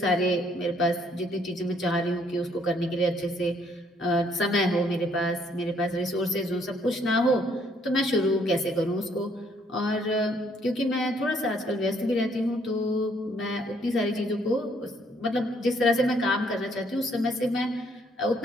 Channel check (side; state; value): both; normal; correlation 0.67